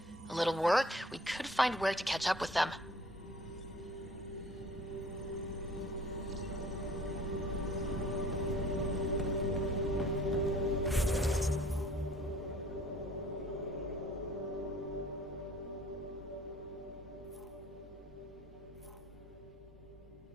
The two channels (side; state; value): both; normal; correlation 0.52